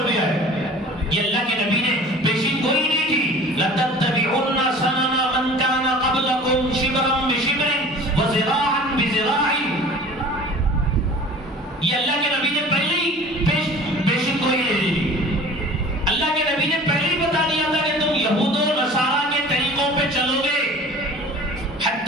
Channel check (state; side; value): normal; both; correlation 0.44